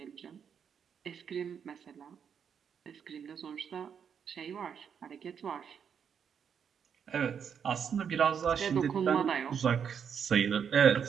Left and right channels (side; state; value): left; quieter; 7.5 dB